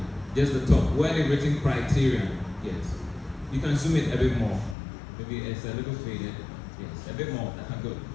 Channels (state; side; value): drops out; right; at 4.8 s